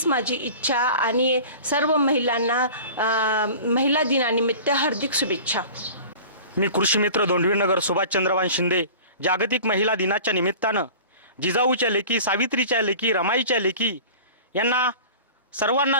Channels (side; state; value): both; inverted; correlation -0.40